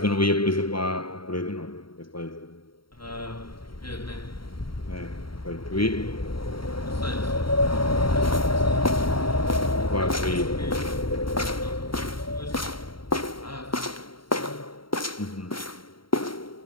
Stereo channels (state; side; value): late; right; 0.73 ms